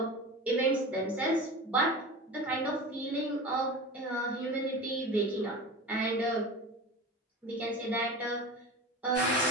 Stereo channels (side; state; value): both; normal; correlation 0.32